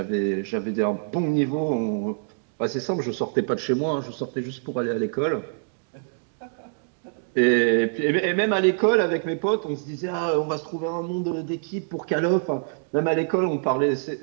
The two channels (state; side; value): silent; left; digital silence